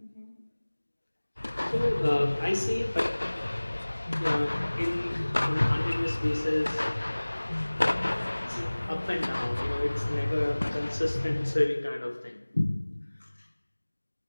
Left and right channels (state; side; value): inverted; both; correlation -1.00